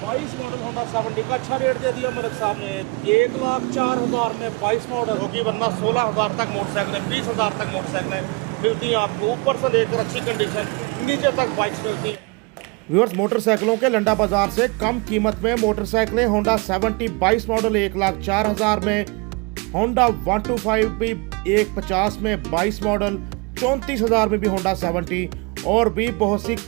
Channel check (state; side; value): quieter; left; 28.2 dB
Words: मॉडल होंडा 70 का अच्छा रेट दे दिया मलिक साहब ने। 1,04,000 में 22 मॉडल होगी, वरना 16,000 तक मोटरसाइकिलें, 20,000 तक मोटरसाइकिलें मिलती हैं आपको। ऊपर से लेकर अच्छी कंडीशन नीचे तक बाइक्स मिलती हैं। व्यूअर्स, मोटरसाइकिलों के लंडा बाजार से कम कीमत में मोटरसाइकिलें होंडा 70 22 मॉडल 1,04,000 में, होंडा 125 भी 1,50 में 22 मॉडल, 34,000 में भी होंडा 70 और भी बहुत सी